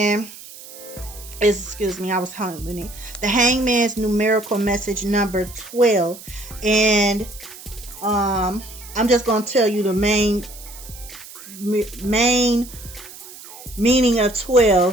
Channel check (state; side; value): noise; right; hiss, 16 dB below the sound